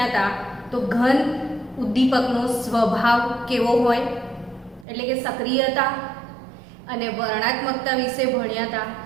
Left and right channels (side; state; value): left; drops out; at 4.9 s